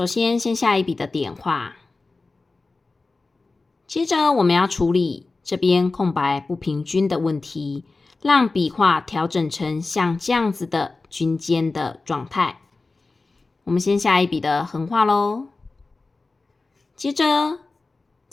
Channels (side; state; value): right; quieter; 3.6 dB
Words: 先下一笔的点画，接着我们要处理这边空白不平均的问题，让笔画调整成像这样子的均间的状态。我们先下一笔的横画咯，接着